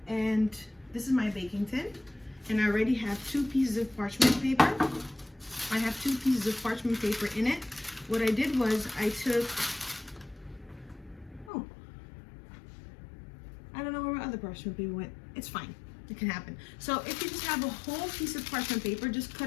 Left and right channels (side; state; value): right; drops out; at 11.5 s